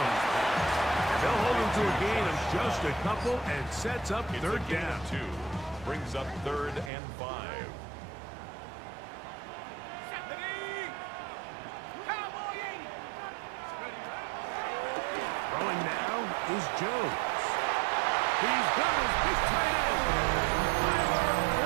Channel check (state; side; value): drops out; left; at 6.9 s